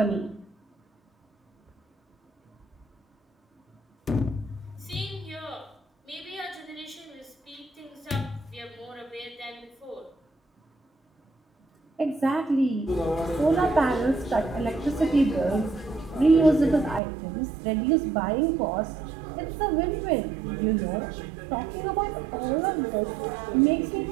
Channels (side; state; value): left; drops out; at 17.0 s